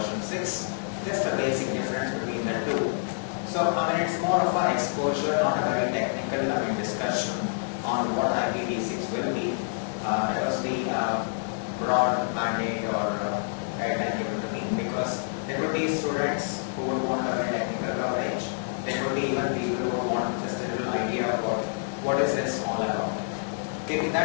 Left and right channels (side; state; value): right; silent; digital silence